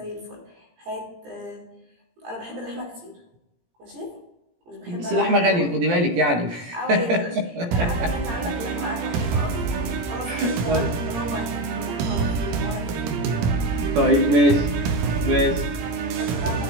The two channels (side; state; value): left; late; 17 ms